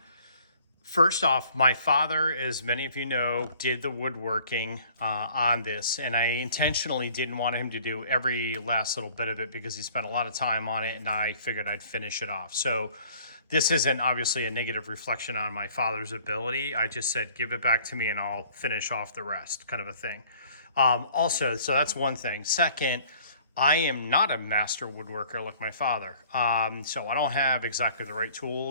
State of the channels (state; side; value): inverted; both; correlation -0.55